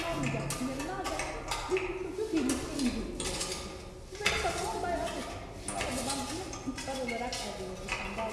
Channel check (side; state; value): both; identical; correlation 1.00